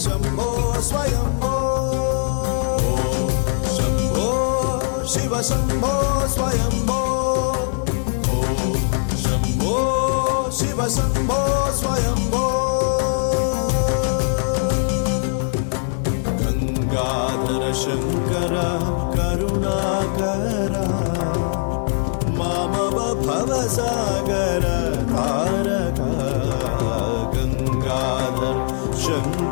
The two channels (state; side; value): silent; right; digital silence